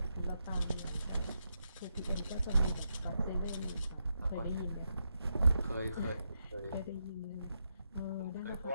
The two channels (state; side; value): inverted; both; correlation -0.83